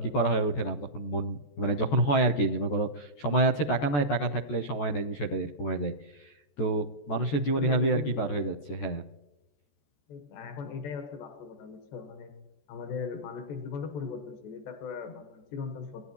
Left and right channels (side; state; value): right; late; 14 ms